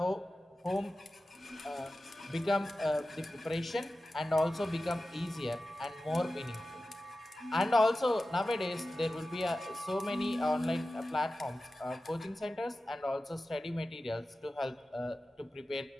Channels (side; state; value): both; normal; correlation 0.94